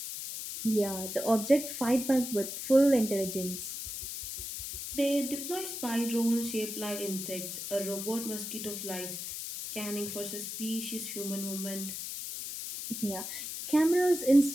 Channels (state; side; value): noise; left; hiss, 6 dB below the sound